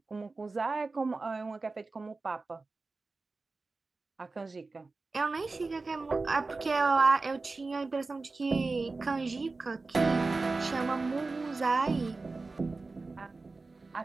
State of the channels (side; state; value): left; quieter; 3.7 dB